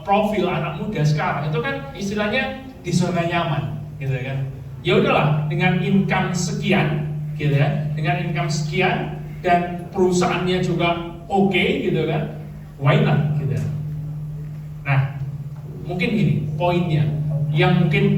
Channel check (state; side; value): identical; both; correlation 1.00